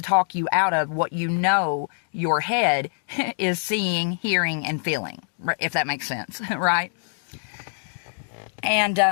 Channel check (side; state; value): right; silent; digital silence